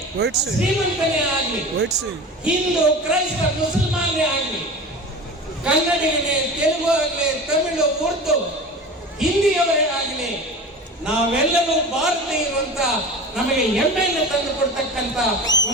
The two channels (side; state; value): both; normal; correlation 0.33